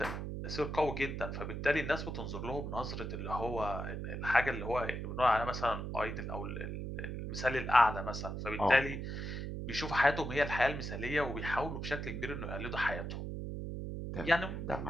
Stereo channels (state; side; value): noise; right; hum, 5 dB below the sound